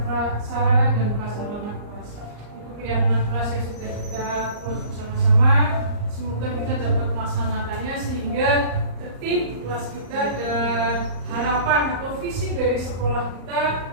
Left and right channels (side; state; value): left; late; 34 ms